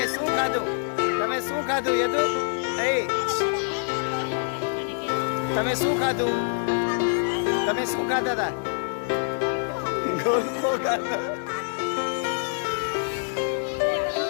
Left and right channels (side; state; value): right; silent; digital silence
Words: શું ખાધું? શું ખાધું યદુ? તમે શું ખાધું? તમે શું ખાધા હતા? ગોલ્ફો ખાધા.